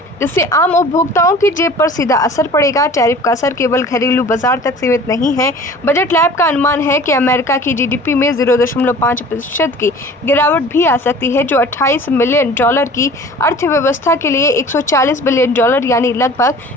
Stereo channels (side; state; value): both; normal; correlation 0.44